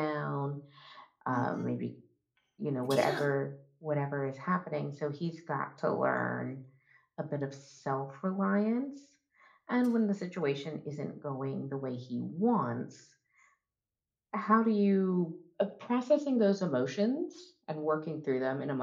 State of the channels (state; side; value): identical; both; correlation 1.00